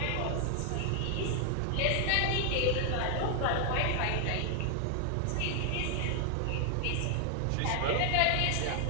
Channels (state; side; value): different; both; correlation 0.00